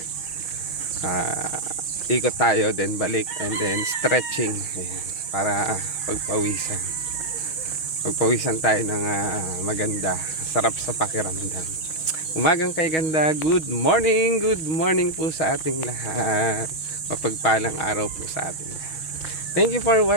ikot tayo, then balik, and then stretching. Ayan. Para pagpawisan. Pagpawisan tayo ng maganda. Sarap sa pakiramdam. Umagang kay ganda. Good morning po sa ating lahat. Mapagpalang araw po sa ating lahat. Thank you for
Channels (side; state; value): right; late; 6.3 ms